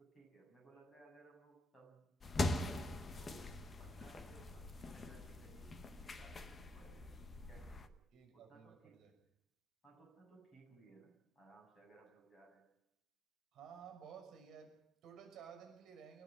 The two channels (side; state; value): both; normal; correlation 0.82